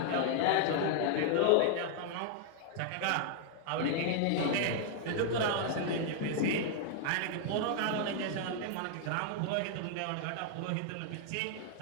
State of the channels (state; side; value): different; both; correlation 0.00